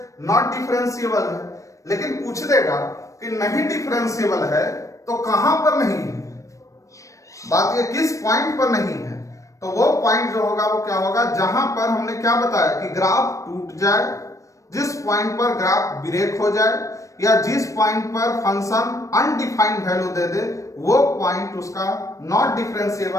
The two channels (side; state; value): right; late; 0.16 ms